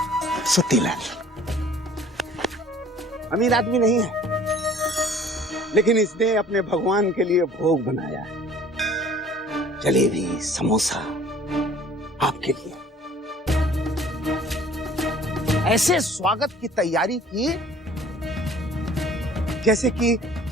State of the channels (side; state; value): both; normal; correlation 0.52